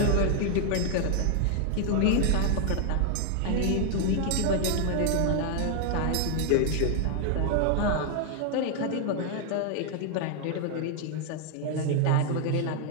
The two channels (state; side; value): different; both; correlation 0.00